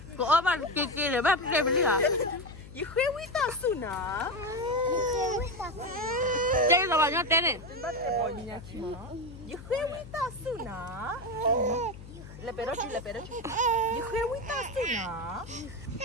Có bạn kia để bác kia bên đi hả? Khuê quý ta su nà. Chơi là bao nhiêu tiền này? Khuê quý ta su nà. Le perochi. Khuê quý ta su nà.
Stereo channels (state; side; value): noise; left; hum, 15 dB below the sound